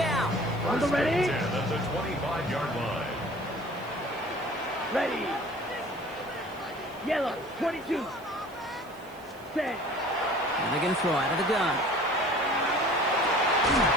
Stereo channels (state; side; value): noise; right; hiss, 25 dB below the sound